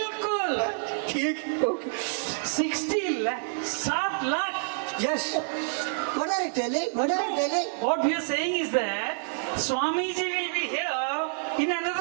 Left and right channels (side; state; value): left; silent; digital silence